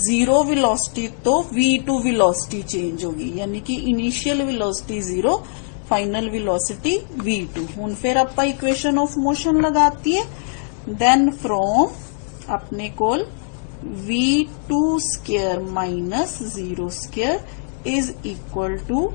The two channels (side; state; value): right; silent; digital silence